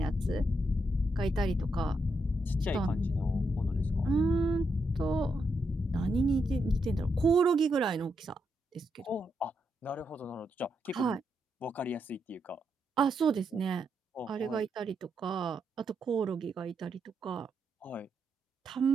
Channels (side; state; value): both; normal; correlation 0.81